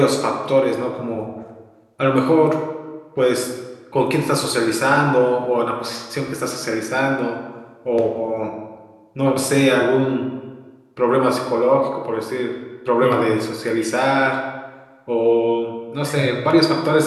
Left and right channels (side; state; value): both; identical; correlation 1.00